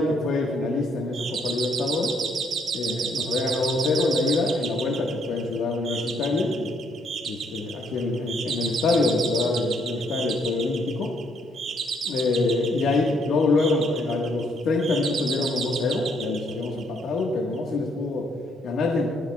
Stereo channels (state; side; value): normal; both; correlation 0.70